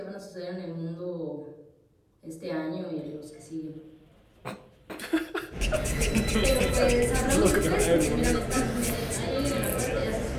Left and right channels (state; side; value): identical; both; correlation 1.00